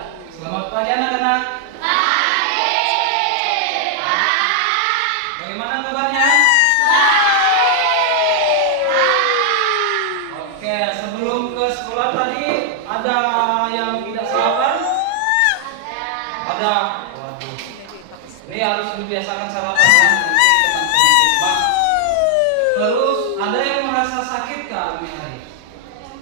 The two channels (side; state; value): both; different; correlation 0.00